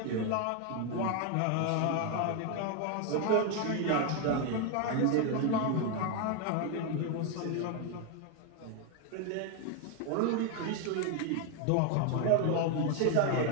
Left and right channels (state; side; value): different; both; correlation 0.01